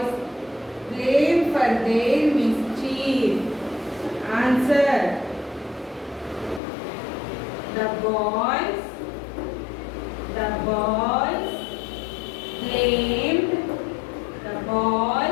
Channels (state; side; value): drops out; right; at 6.6 s